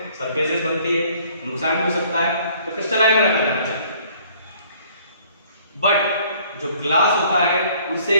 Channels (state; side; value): inverted; both; correlation -0.58